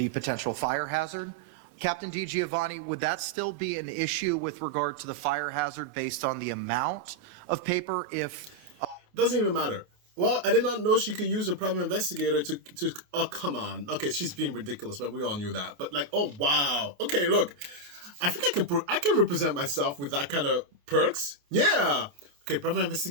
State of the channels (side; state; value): left; late; 28 ms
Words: potential fire hazard. Captain DiGiovanni, would that still be an issue with regard to the fire hazard based on the amount of paper if... Doesn't even matter. Well, I did not know she could use a private investigator to oh, come on. Okay, she's being ridiculous, but we all knew that. But like, oh, wow. Okay, look, I think I can represent myself with that kind of perks. Yeah. Okay, private